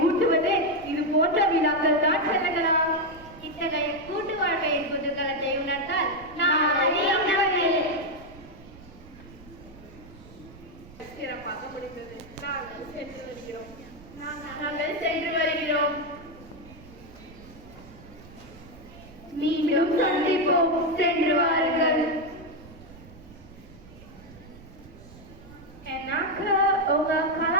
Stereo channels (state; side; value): noise; right; rumble, 20 dB below the sound